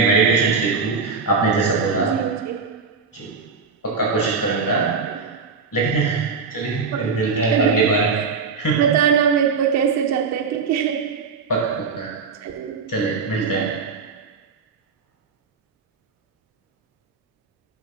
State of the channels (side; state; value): left; quieter; 5.1 dB